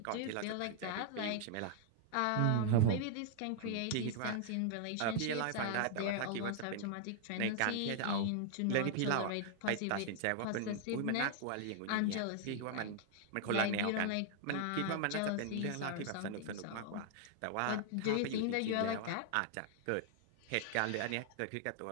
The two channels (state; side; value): different; both; correlation 0.00